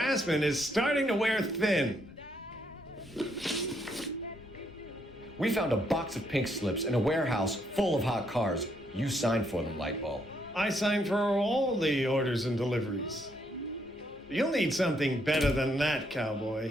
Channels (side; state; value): both; normal; correlation 0.74